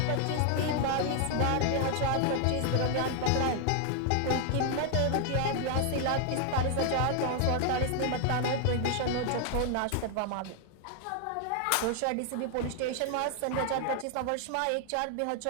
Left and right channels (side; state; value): both; different; correlation 0.00